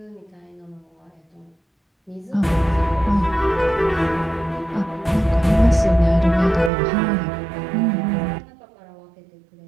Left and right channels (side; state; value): left; drops out; at 6.7 s